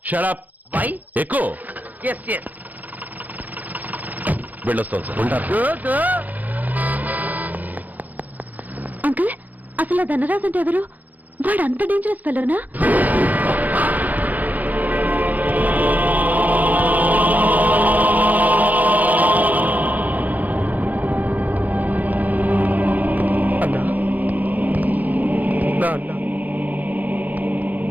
shut up. Why? ఎక్కువ ఎస్ ఎస్. వెళ్ళొస్తాను సార్. Go go. అంకుల్, అసలు ఆ ధనరాజ్ అంటే ఎవరు? వాడు అంత డేంజరస్ ఫెలోనా? అన్నా, నా అన్నా,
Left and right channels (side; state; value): left; late; 0.081 ms